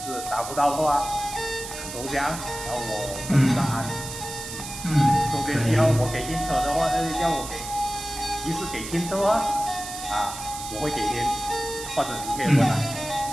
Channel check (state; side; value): noise; right; hiss, 9 dB below the sound